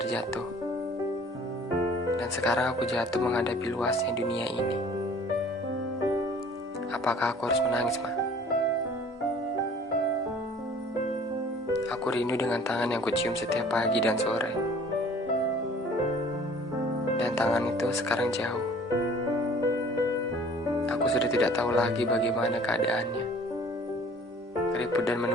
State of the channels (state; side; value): normal; both; correlation 0.51